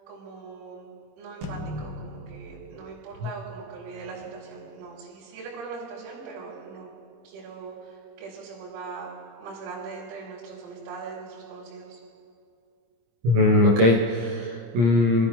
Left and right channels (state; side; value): late; left; 26 ms